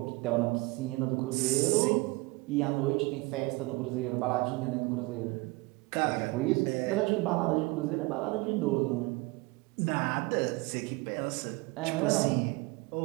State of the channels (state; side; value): quieter; left; 24.5 dB